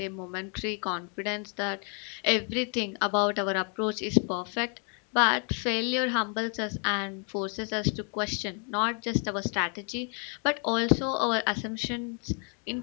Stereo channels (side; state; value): right; quieter; 39.2 dB